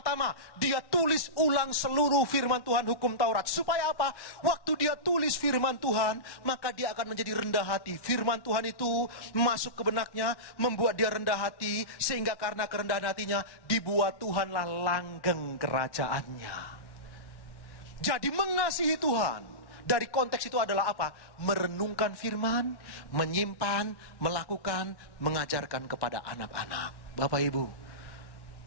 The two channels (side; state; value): right; late; 1.1 ms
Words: dia tulis ulang seluruh firman Tuhan, hukum Taurat. Supaya apa? Waktu dia tulis firman Tuhan, maka dia akan menjadi rendah hati. Firman Tuhan itu masuk ke benaknya, membuat dia rendah hati, sehingga karena kerendahan hatinya, dibuat Tuhanlah langgeng kerajaannya. Jadi mengasihi Tuhan dari konteks itu adalah apa? Merenungkan firman, menyimpan, melakukan, mengajarkan kepada anak-anak. Bapak Ibu,